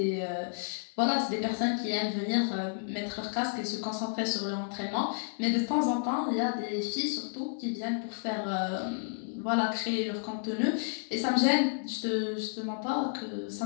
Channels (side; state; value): right; silent; 57 dB below the other